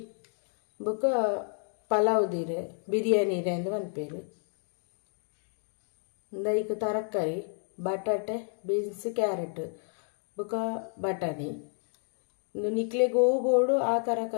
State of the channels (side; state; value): right; silent; 57 dB below the other